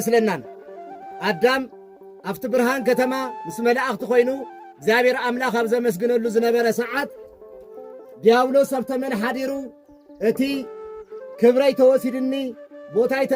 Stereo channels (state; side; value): identical; both; correlation 1.00